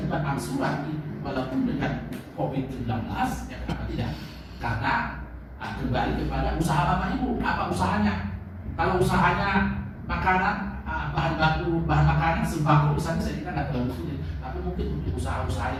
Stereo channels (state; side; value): identical; both; correlation 1.00